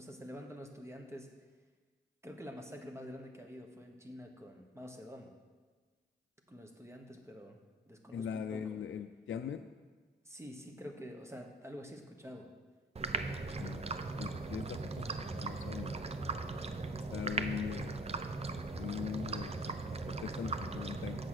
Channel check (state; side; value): normal; both; correlation 0.48